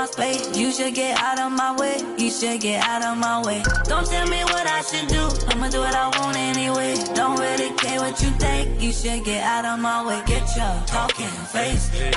space? You should get out of my way, you should get out of my way. Don't tell me what I should do, I'ma do what I want anyway. Don't really care what you think, you should get out of my way. Get your talking face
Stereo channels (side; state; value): both; identical; correlation 1.00